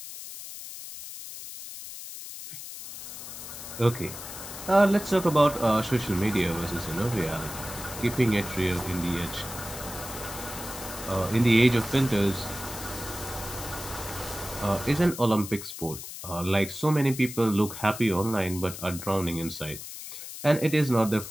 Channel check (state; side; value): noise; left; hiss, 11 dB below the sound